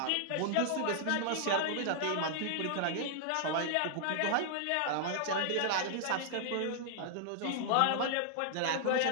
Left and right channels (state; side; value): different; both; correlation -0.01